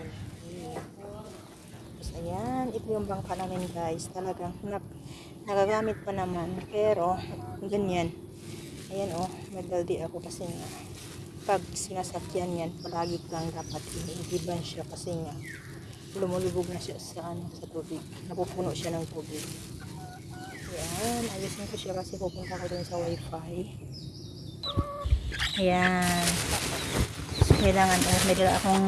Tapos, ayan, ito yung bangka namin guys. Talagang, nagagamit pa naman. Pero, ganyan. Ayan oh, may baldi ako kasi nga, pag sinasakyan yan, palagi kang dapat inihiban siya kasi nga, lumulubog na siya sa, sa tubig. Napupuno siya ng tubig. Ayan, ayusin ko siya kasi pupunta ko dun sa wifi. Ayan. So, kailangan, may dala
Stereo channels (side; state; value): both; identical; correlation 1.00